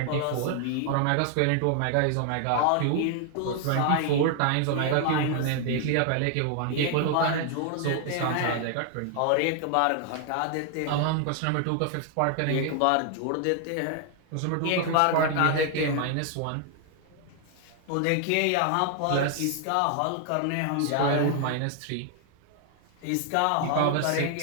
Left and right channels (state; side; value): different; both; correlation 0.00